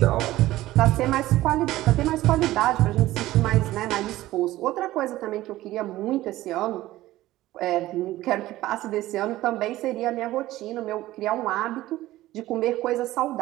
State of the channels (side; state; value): left; quieter; 16.1 dB